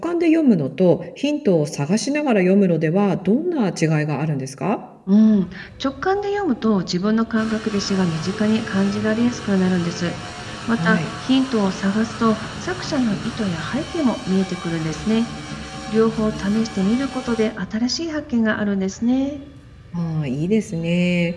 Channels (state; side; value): identical; both; correlation 1.00